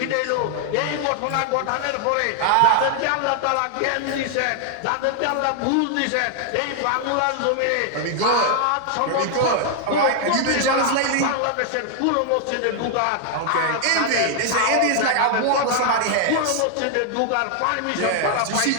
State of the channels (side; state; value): both; different; correlation 0.00